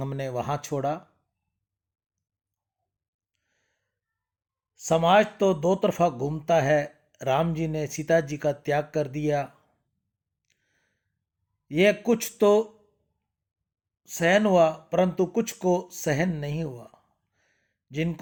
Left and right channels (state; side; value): identical; both; correlation 1.00